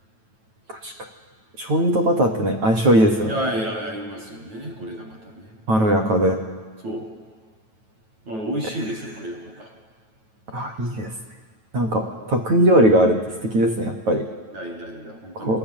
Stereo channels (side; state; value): left; late; 9.2 ms